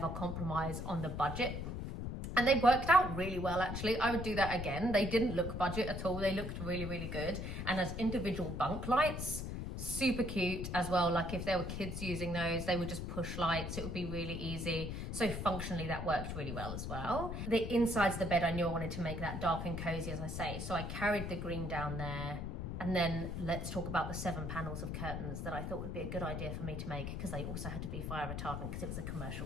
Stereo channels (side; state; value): left; noise; rumble, 4 dB below the sound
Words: compromise on the budget. And they worked out really well, actually. I would do that again. They didn't look budget at all. They looked really, really good. And as individual bunk lights, super cute as well. Like if there were kids using those, they would just push lights. It would be really easy. So functionally, that worked really well as well. The insides of the bed, I knew I wanted to make that dark and cozy, as I say. So I carried the green down there. And then let's talk about the 7 panels of curtains that I thought would be a good idea for me to make, because they also had to be fire retardant because it was a